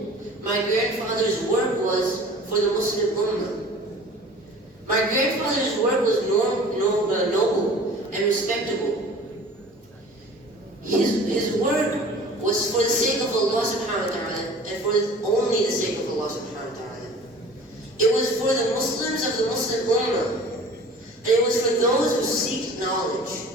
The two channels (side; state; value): both; normal; correlation 0.44